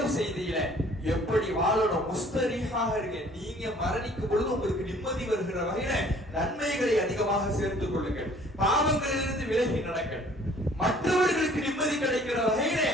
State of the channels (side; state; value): both; normal; correlation 0.55